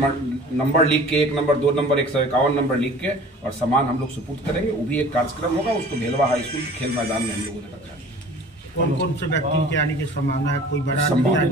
लिख के, 1 नंबर 2 नंबर 151 नंबर लिख के और सामान हम लोग सुपुर्द करेंगे। वो भी एक कार्यक्रम होगा, उसको भेलवा हाई स्कूल के खेल मैदान में हम लोगों ने रखा है। कौन से व्यक्ति के आने की संभावना है? कोई बड़ा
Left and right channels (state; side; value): normal; both; correlation 0.46